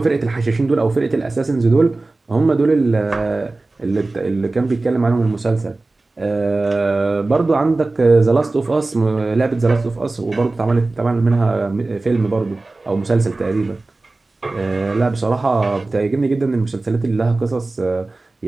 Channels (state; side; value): quieter; left; 3.2 dB